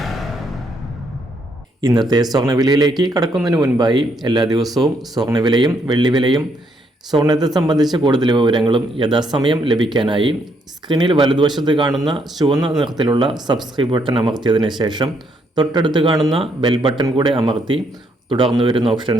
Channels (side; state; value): both; normal; correlation 0.73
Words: ഇന്നത്തെ സ്വർണ്ണവിലയിലേക്ക് കടക്കുന്നതിന് മുൻപായി എല്ലാ ദിവസവും സ്വർണ്ണവിലയും വെള്ളിവിലയും സ്വർണ്ണത്തെ സംബന്ധിച്ച കൂടുതൽ വിവരങ്ങളും യഥാസമയം ലഭിക്കാനായി സ്ക്രീനിൽ വലതുവശത്ത് കാണുന്ന ചുവന്ന നിറത്തിലുള്ള സബ്സ്ക്രൈബ് ബട്ടൺ അമർത്തിയതിനു ശേഷം തൊട്ടടുത്ത് കാണുന്ന ബെൽ ബട്ടൺ കൂടെ അമർത്തി തുടർന്ന് വരുന്ന